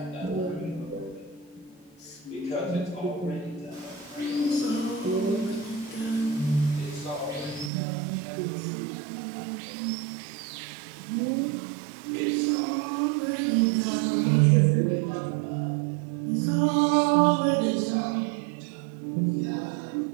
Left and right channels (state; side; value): drops out; left; at 7.7 s